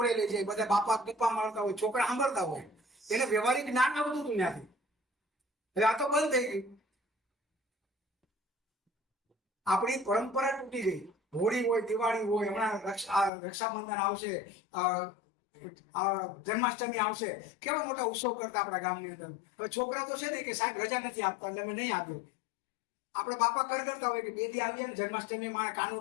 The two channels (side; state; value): right; drops out; at 13.3 s